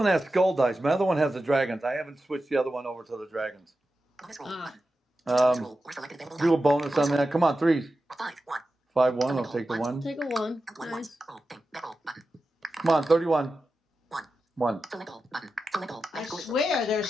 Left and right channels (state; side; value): normal; both; correlation 0.92